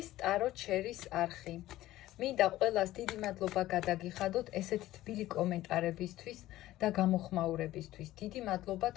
ტარო ჩერის არხი. მინდა ყველას დიდი მადლობა გადაგიხადოთ ესეთი თბილი კომენტარებისთვის და გამოხმაურებისთვის. დიდი მადლობა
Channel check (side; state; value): right; quieter; 15.4 dB